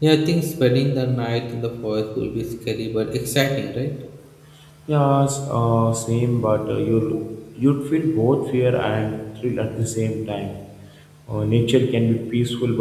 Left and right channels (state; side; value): identical; both; correlation 1.00